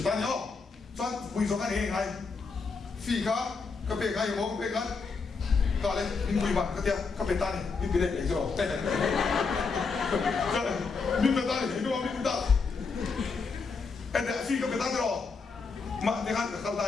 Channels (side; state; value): right; quieter; 4.7 dB